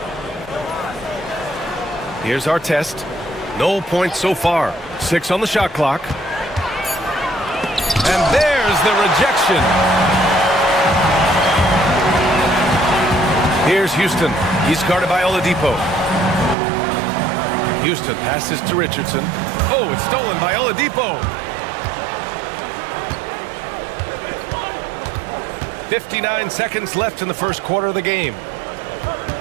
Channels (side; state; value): left; drops out; at 16.6 s